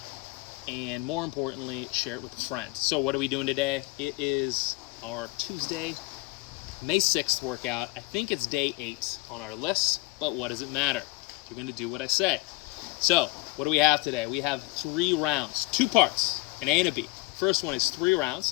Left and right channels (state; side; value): quieter; right; 22.9 dB